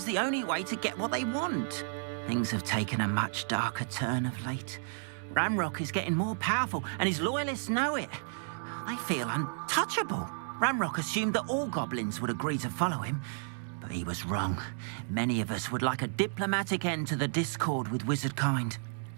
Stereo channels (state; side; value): silent; left; digital silence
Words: the only way to get what they want. Things have taken a much darker turn of late. Ramrock is getting more powerful, and his loyalists know it. They feel untouchable. Ramrock assumed that all goblins would agree to follow him, but he was wrong. Many of us would like a diplomatic end to the discord with wizard kind.